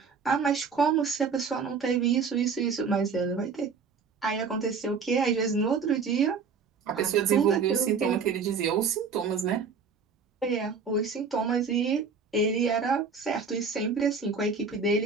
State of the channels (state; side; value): quieter; left; 5.4 dB